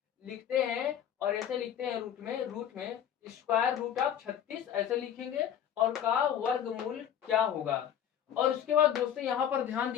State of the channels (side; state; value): right; quieter; 9.5 dB